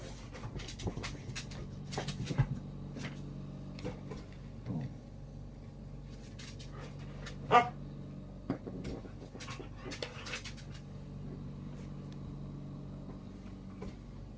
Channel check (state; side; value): identical; both; correlation 1.00